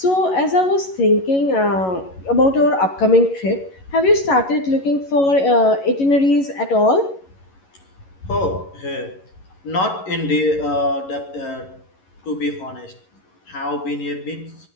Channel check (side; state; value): right; late; 11 ms